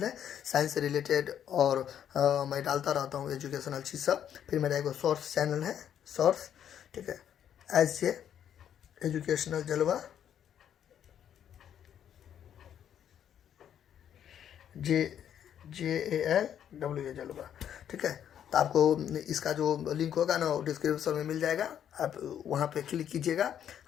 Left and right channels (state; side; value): quieter; right; 9.6 dB